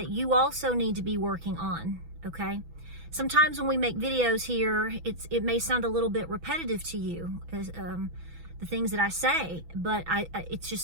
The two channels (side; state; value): left; late; 6.1 ms